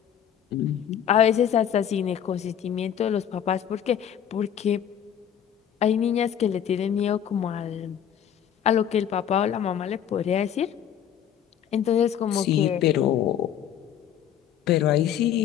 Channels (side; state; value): right; quieter; 9.4 dB